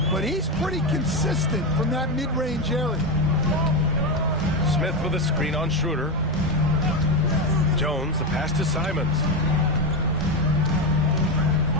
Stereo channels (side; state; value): both; normal; correlation 0.13